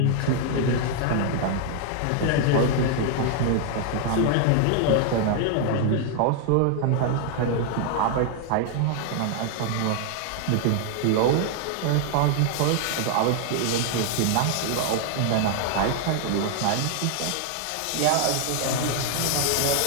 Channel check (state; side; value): different; both; correlation 0.00